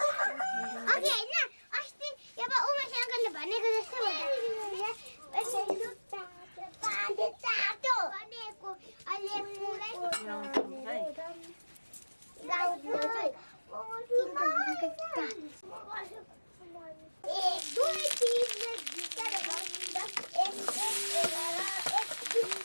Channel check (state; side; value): inverted; both; correlation -1.00